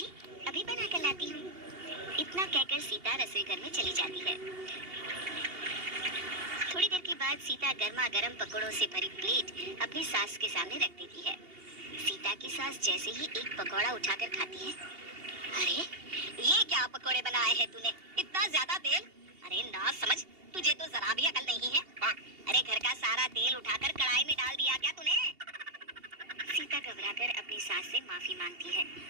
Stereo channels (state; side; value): late; left; 2.8 ms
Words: अभी बना कर लाती हूँ। इतना कहकर सीता रसोई घर में चली जाती है। थोड़ी देर के बाद सीता गर्मा गर्म पकौड़ों से भरी प्लेट अपनी सास के सामने रख देती है। सीता की सास जैसे ही एक पकौड़ा उठाकर खाती है, अरे ये क्या पकौड़े बनाए हैं तूने, इतना ज्यादा तेल। अरे ना समझ, तुझे तो जरा भी अकल नहीं है। अरे घर का सारा तेल उठाकर कढ़ाई में डाल दिया क्या तूने। सीता घबराकर अपनी सास से माफी मांगती है।